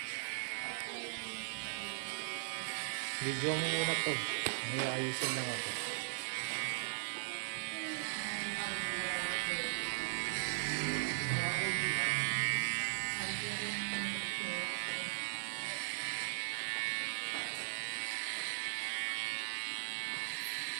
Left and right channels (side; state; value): left; silent; digital silence